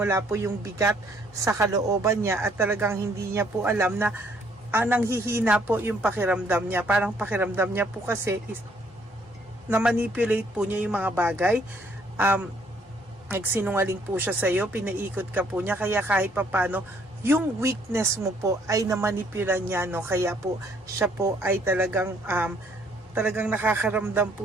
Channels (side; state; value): both; normal; correlation 0.65